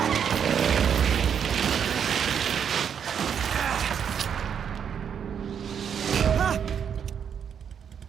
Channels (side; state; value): left; quieter; 7.8 dB